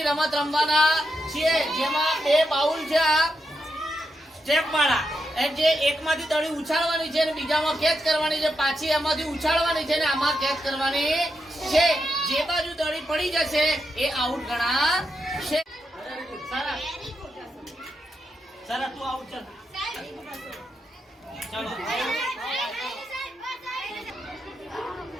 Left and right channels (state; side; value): normal; both; correlation 0.84